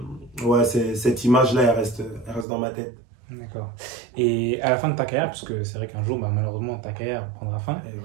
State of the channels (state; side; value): drops out; left; at 2.5 s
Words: ouais, cette image-là, elle reste dans ma tête. D'accord. Et à la fin de ta carrière, parce que c'est vrai qu'un jour, bah, malheureusement, ta carrière prendra fin, Et ouais.